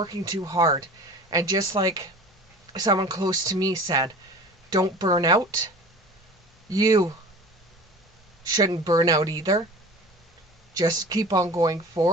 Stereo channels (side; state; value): both; normal; correlation 0.40